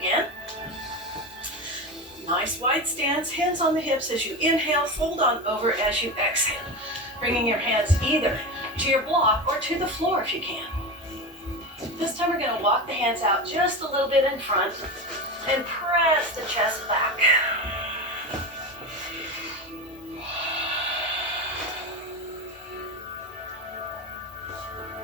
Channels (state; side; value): normal; both; correlation 0.22